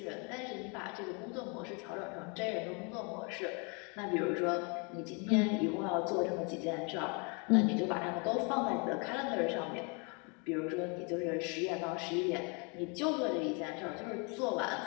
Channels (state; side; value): quieter; right; 33.7 dB